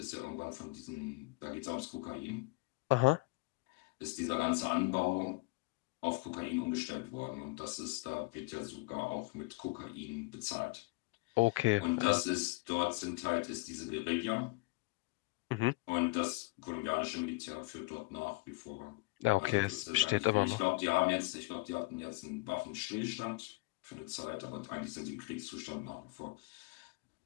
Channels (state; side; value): quieter; right; 24.0 dB